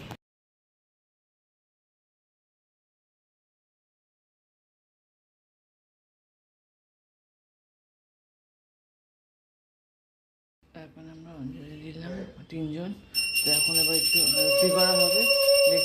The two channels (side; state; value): both; identical; correlation 1.00